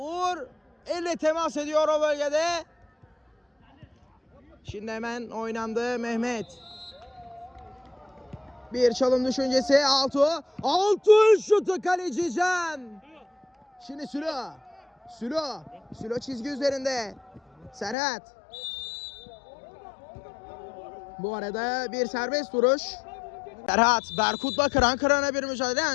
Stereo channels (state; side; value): drops out; right; at 17.9 s